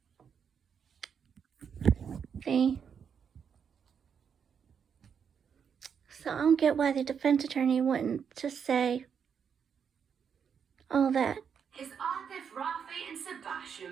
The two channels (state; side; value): quieter; left; 7.1 dB